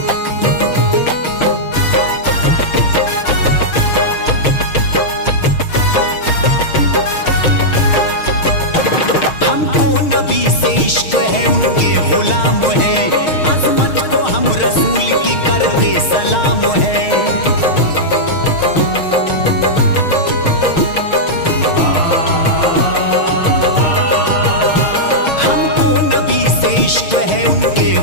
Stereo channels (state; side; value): late; right; 6.5 ms